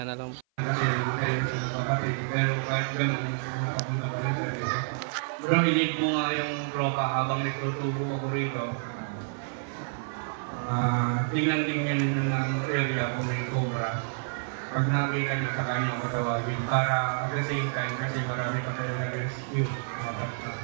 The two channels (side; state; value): left; silent; 55 dB below the other